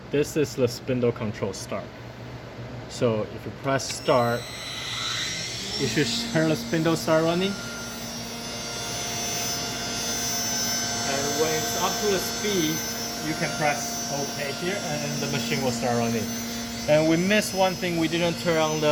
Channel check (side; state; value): both; identical; correlation 1.00